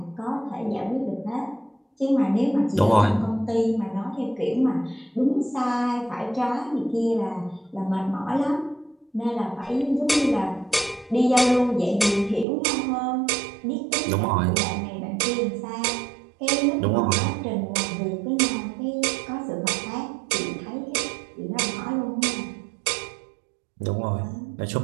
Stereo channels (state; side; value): drops out; left; at 12.5 s